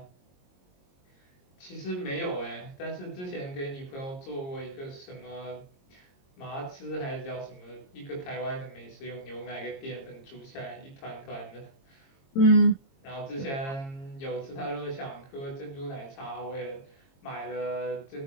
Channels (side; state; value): right; late; 22 ms